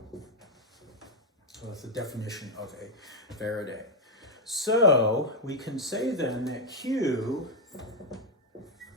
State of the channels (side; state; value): both; normal; correlation 0.02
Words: So that's the definition of a Faraday. So we can say then that Q